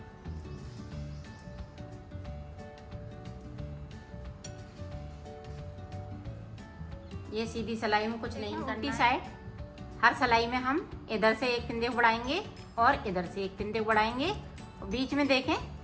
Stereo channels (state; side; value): identical; both; correlation 1.00